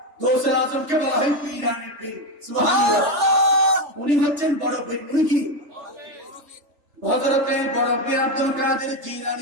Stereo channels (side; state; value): left; late; 3.4 ms